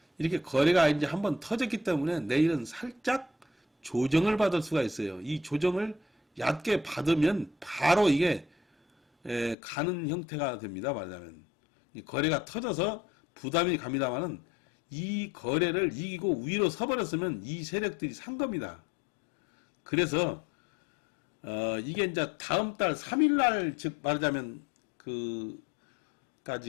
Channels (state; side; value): drops out; right; at 9.6 s